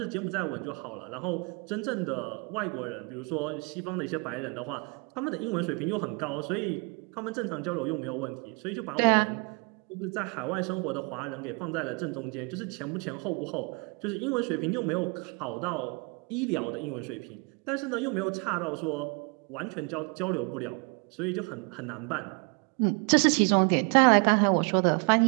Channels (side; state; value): left; quieter; 32.4 dB